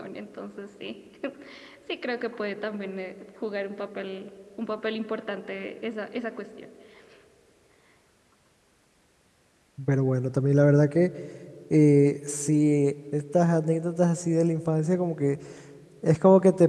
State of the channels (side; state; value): both; identical; correlation 1.00